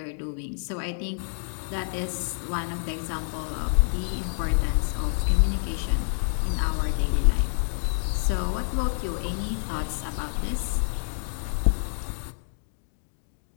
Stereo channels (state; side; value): silent; right; 60 dB below the other